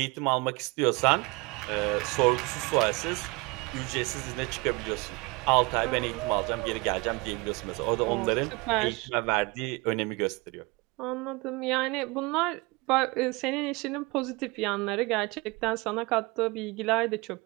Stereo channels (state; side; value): quieter; left; 25.8 dB